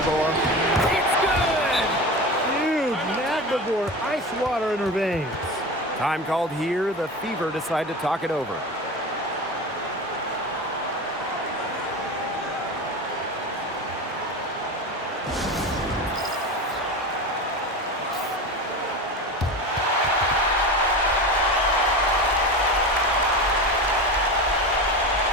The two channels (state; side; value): normal; both; correlation 0.27